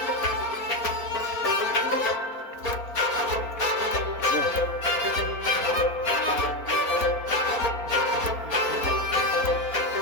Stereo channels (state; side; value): late; right; 4.3 ms